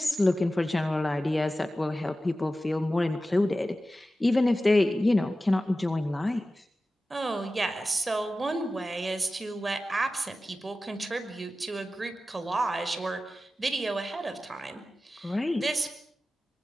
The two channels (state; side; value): normal; both; correlation 0.95